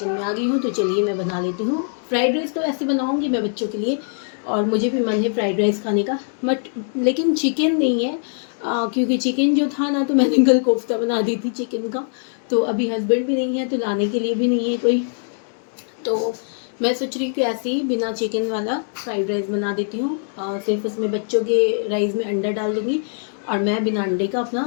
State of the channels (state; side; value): silent; right; digital silence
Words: में आ गई हूँ। तो चलिए मैं बना लेती हूँ फ्राइड राइस। तो ऐसे बनाऊँगी मैं बच्चों के लिए, और मुझे भी मन है फ्राइड राइस खाने का, बट लेकिन चिकन नहीं है, क्योंकि चिकन जो था ना, तो मैंने कल कोफ्ता बना दी थी चिकन का। तो अभी हस्बैंड भी नहीं है, तो लाने के लिए भी नहीं है कोई। तो मैं सोच रही हूँ कि ऐसे ही बिना चिकन वाला फ्राइड राइस बना देती हूँ, सिर्फ उसमें बच्चों के राइस में अंडा डाल दूँगी और मैं बिना अंडे का अपना